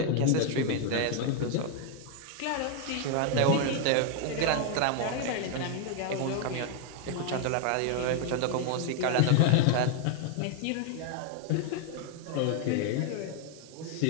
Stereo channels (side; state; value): both; different; correlation 0.01